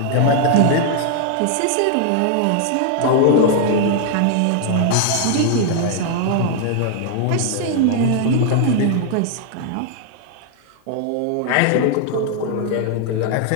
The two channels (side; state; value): both; different; correlation 0.00